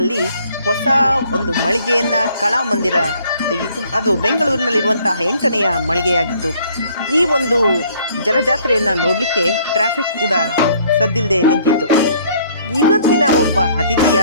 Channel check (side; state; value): both; inverted; correlation -0.61